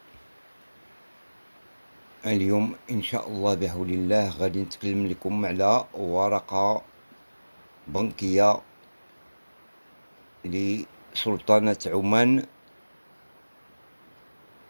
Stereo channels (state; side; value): inverted; both; correlation -1.00